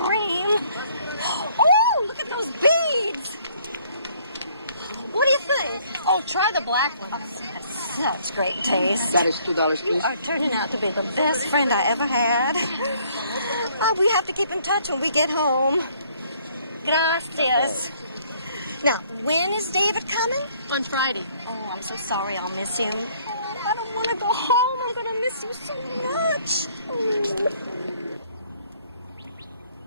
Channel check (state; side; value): inverted; both; correlation -0.63